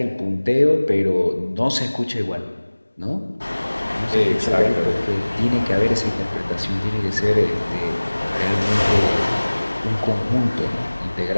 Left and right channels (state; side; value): inverted; both; correlation -1.00